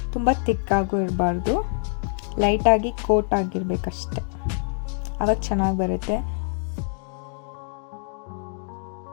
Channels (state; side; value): silent; right; 62 dB below the other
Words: ತುಂಬ ತಿಕ್ಕಾಗೂ ಇರಬಾರ್ದು, ಲೈಟಾಗಿ ಕೋಟ್ ಆಗಿರಬೇಕಷ್ಟೆ, ಆವಾಗ ಚೆನ್ನಾಗಿ ಬರುತ್ತೆ.